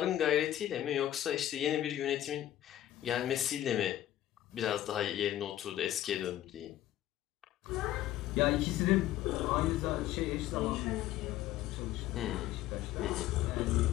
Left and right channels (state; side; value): quieter; right; 13.2 dB